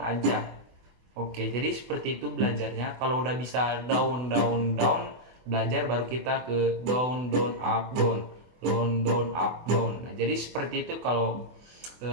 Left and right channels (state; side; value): late; left; 24 ms